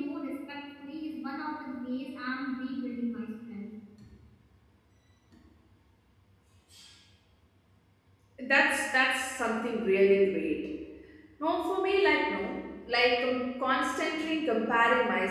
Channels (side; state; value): both; identical; correlation 1.00